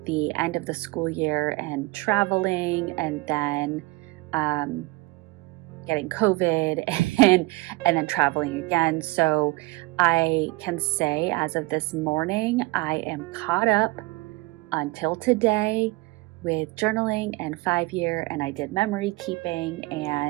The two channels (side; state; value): left; quieter; 22.4 dB